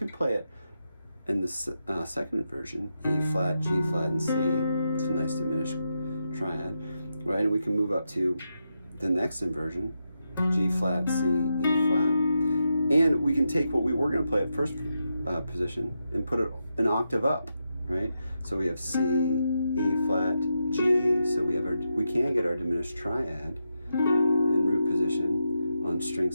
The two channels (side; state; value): both; inverted; correlation -0.86